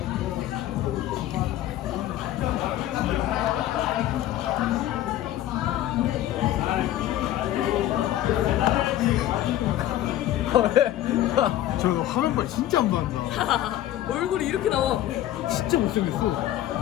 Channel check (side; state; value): right; quieter; 13.3 dB